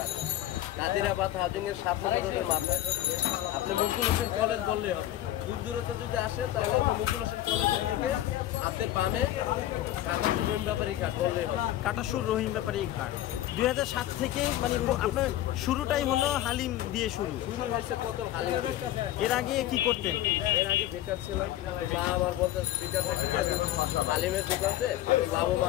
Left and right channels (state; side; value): quieter; right; 13.6 dB